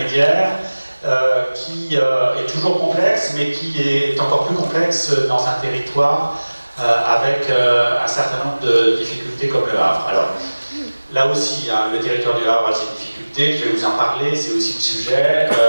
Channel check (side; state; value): both; inverted; correlation -1.00